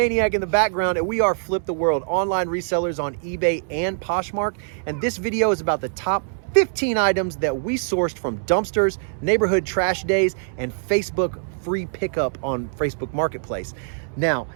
in the background, and we are Flip the World, online resellers on eBay and Poshmark. And this video is about the top 15 items that we sourced from dumpsters, neighborhood trash days, and Facebook free pickup on Facebook Marketplace. Now,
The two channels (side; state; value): left; silent; 63 dB below the other